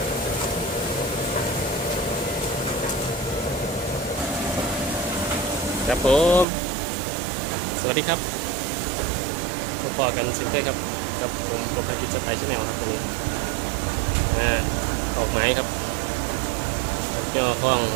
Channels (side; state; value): left; drops out; at 6.5 s